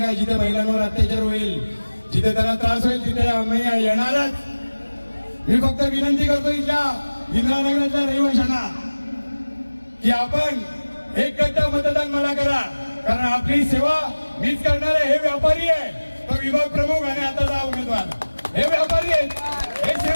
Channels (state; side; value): inverted; both; correlation -1.00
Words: आहे. जिथे महिलांवर अत्याचार होईल, जिथे त्यांना त्रास होईल, तिथे आम्ही येणारच. मी फक्त विनंती करतो इथल्या इंदिरानगरातल्या रहिवाशांना की आपण एक गट्टा मतदान मला करा. कारण आपली सेवा मीच करणार आहे. हे व्यापारी आहे, तो विभाग प्रमुख आणि आताचा उमेदवार, हे व्यापारी आहेत, हे